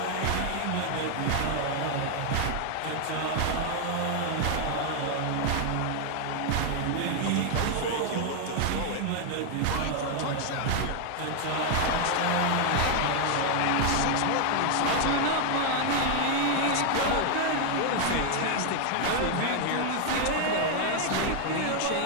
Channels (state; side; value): different; both; correlation 0.00